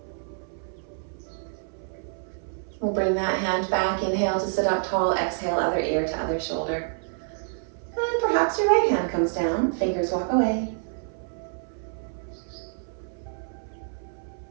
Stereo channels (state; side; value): silent; left; 60 dB below the other